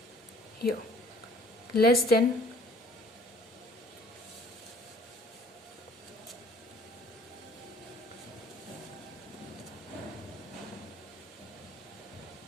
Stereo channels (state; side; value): normal; both; correlation 0.55